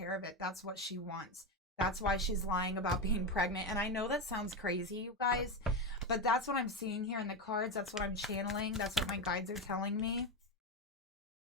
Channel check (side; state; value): both; normal; correlation 0.13